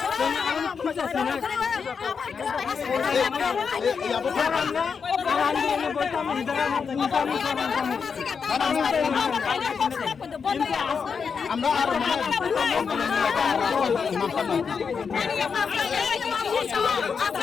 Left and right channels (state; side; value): quieter; right; 5.9 dB